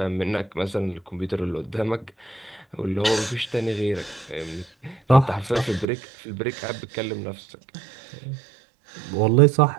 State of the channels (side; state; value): left; drops out; at 5.9 s